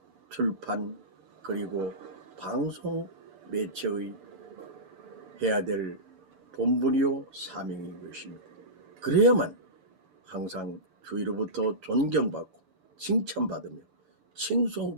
출판, 그리고 방송 매체의 해야 될 본분이요 사명인 것입니다. 그래야만 항상 주위로부터 존경받고 칭찬받으며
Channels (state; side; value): late; left; 6.8 ms